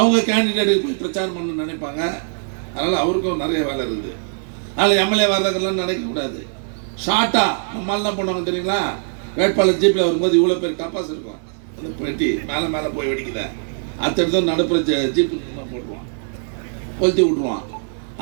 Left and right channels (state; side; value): silent; left; digital silence